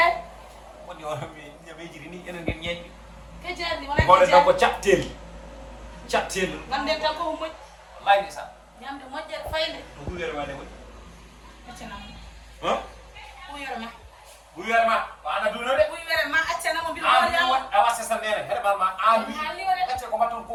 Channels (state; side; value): identical; both; correlation 1.00